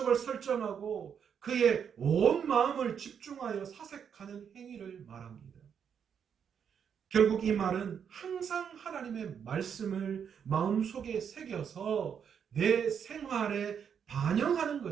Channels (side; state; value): left; quieter; 7.6 dB